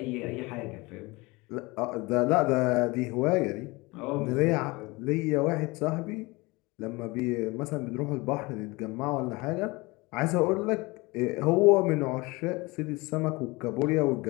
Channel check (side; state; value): right; quieter; 24.0 dB